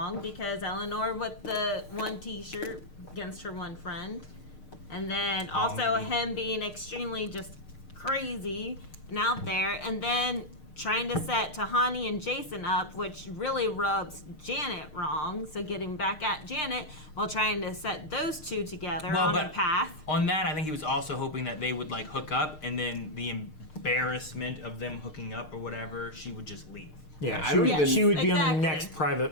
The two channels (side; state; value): right; late; 6.5 ms